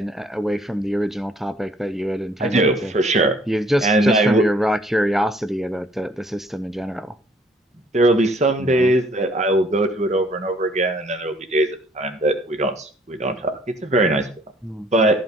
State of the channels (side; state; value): both; normal; correlation 0.60